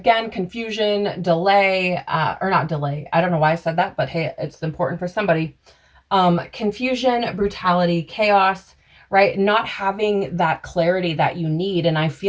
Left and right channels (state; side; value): identical; both; correlation 1.00